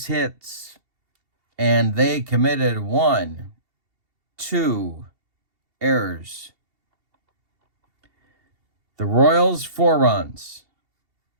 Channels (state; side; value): late; left; 2.7 ms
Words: hits, and they committed 1, 2 errors. The Royals, 4 runs,